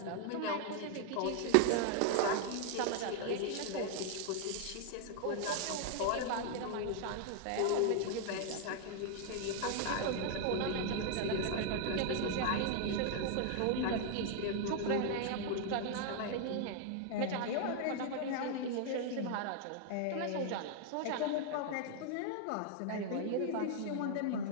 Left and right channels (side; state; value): both; different; correlation 0.00